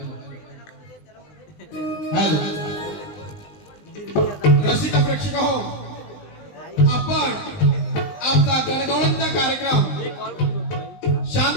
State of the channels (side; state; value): right; late; 20 ms